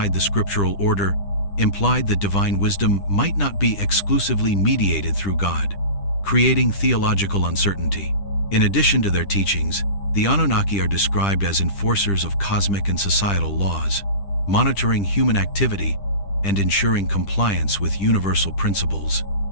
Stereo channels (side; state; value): right; late; 10 ms